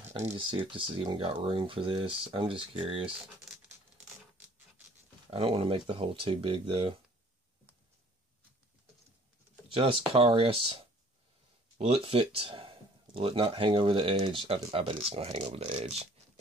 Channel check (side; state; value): both; normal; correlation 0.55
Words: I need to see if this has even got room for this. I'm just curious. I don't want to make the hole too big though. Just curious. Will it fit? Will it not hang over the edge? I bet it's going to hang over the edge.